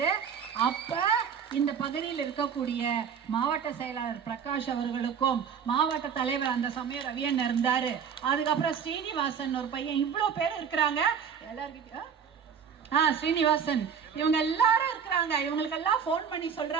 அப்ப இந்த பகுதியில் இருக்கக்கூடிய மாவட்ட செயலாளர் பிரகாஷ் அவர்களுக்கும் மாவட்ட தலைவர் அந்த சமயம் ரவியன் இருந்தாரு, அதுக்கப்புறம் ஸ்ரீனிவாசன் ஒரு பையன், இவ்வளவு பேர் இருக்கிறாங்க. எல்லாருக்கிட்ட ஸ்ரீனிவாசன் இவங்க எல்லாரும் இருக்கிறாங்க. இவங்களுக்கெல்லாம் போன் பண்ணி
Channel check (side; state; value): left; quieter; 7.3 dB